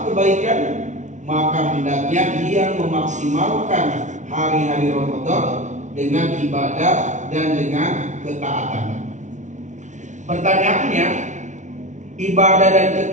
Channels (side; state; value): left; late; 0.36 ms